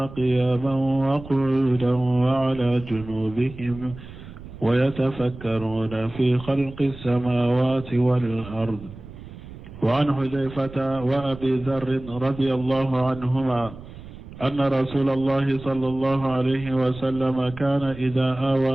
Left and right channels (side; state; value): right; noise; rumble, 15 dB below the sound